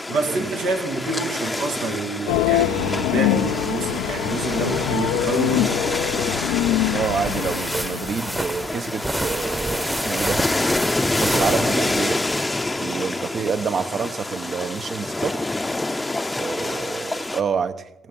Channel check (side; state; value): both; normal; correlation 0.67